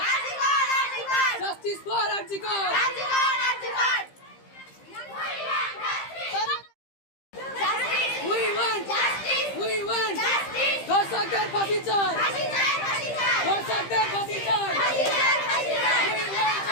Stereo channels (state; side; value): late; right; 15 ms